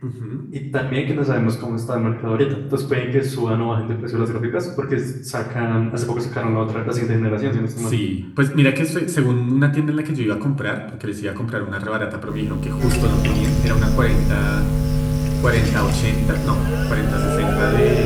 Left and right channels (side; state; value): both; identical; correlation 1.00